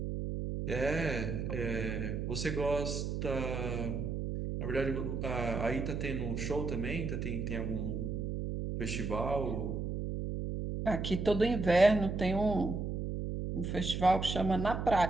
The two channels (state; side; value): noise; right; hum, 3 dB below the sound